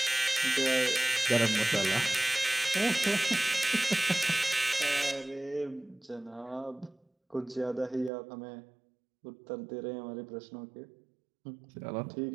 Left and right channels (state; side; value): drops out; left; at 8.1 s